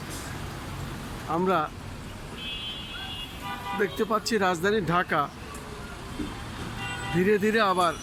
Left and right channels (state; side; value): identical; both; correlation 1.00